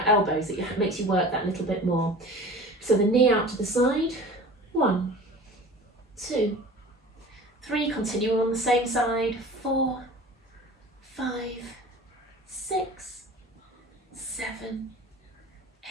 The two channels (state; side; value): normal; both; correlation 0.39